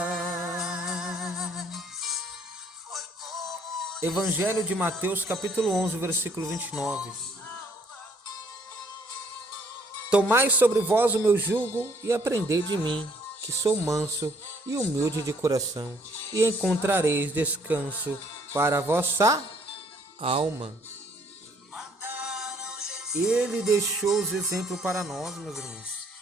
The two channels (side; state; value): both; normal; correlation 0.64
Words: Evangelho de Mateus, capítulo 11, versículo 29. Tomai sobre vós o meu jugo e aprendei de mim, que sou manso e humilde de coração, e encontrareis descanso para a vossa alma. Ele deixou os exemplos para nós, meus irmãos.